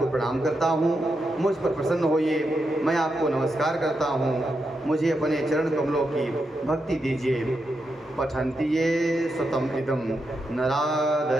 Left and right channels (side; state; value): both; normal; correlation 0.85